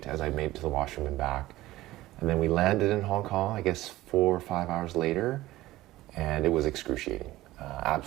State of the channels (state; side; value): quieter; left; 16.9 dB